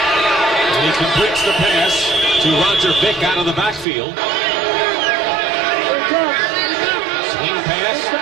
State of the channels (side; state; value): left; drops out; at 3.9 s